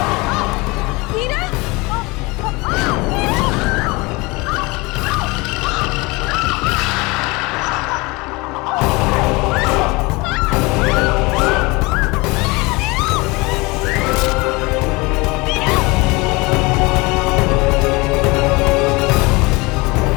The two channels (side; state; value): right; quieter; 24.7 dB